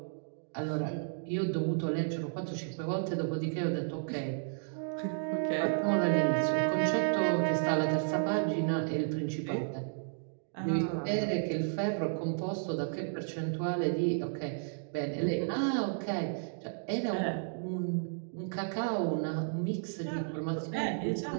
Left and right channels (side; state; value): left; silent; digital silence